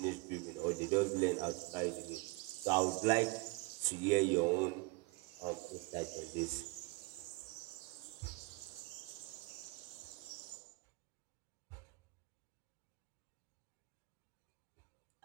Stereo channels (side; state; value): left; quieter; 26.5 dB